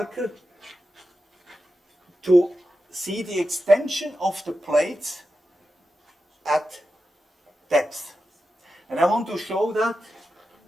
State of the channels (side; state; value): both; normal; correlation 0.90